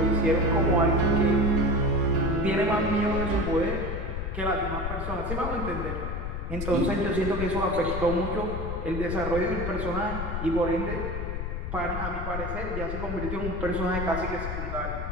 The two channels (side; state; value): left; noise; rumble, 4 dB below the sound